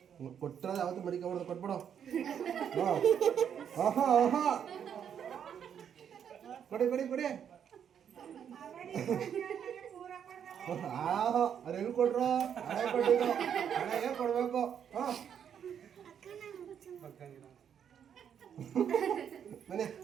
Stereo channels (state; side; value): quieter; left; 8.4 dB